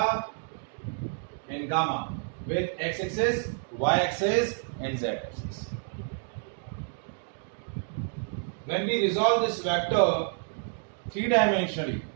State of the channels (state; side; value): silent; left; digital silence